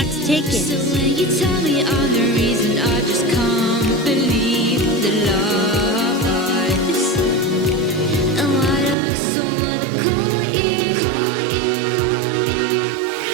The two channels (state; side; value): drops out; left; at 9.0 s